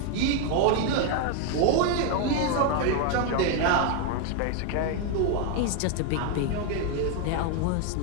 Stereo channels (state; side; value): different; both; correlation 0.01